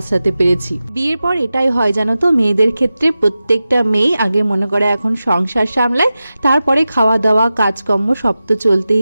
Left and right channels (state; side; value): inverted; both; correlation -0.94